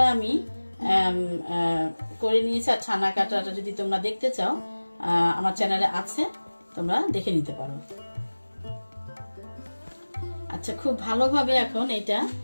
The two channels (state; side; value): inverted; both; correlation -1.00